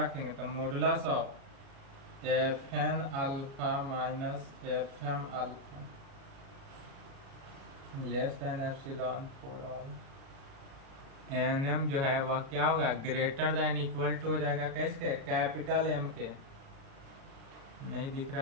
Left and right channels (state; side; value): late; left; 36 ms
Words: रखेंगे तो modulus of F n alpha minus F m alpha less than epsilon for all n m जो है वह क्या होगा, ग्रेटर देन इक्वल टू हो जाएगा कैसे, कैपिटल एम के, नहीं दिख